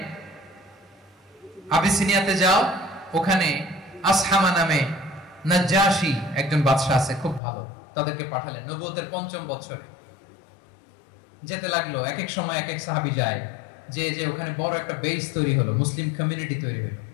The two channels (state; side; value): drops out; right; at 7.4 s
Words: আবিসিনিয়াতে যাও, ওখানে আসহামা নামে নাজ্জাশী একজন বাদশা আছে, খুব ভালো। তাদেরকে পাঠালেন নবুয়তের 5ম বছরে। যেতে লাগলো, এক এক সময় এক এক সাহাবী যায়, যে যে ওখানে বড় একটা বেস তৈরি হলো, মুসলিম কমিউনিটি তৈরি হলো।